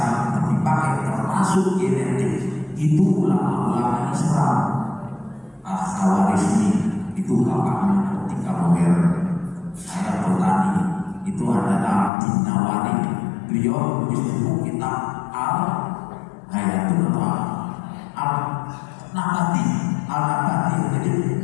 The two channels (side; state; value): right; drops out; at 12.1 s